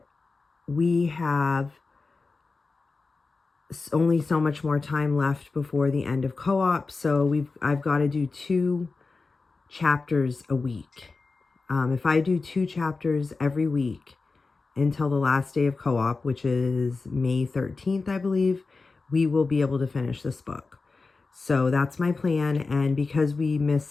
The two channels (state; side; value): quieter; right; 4.0 dB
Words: we have only so much more time left before the end of co-op, so I've got to do 2 chapters a week. If I do 2 chapters every week until the last day of co-op, which is May 13th, I believe, we will be able to finish this book. So that's my plan. And because we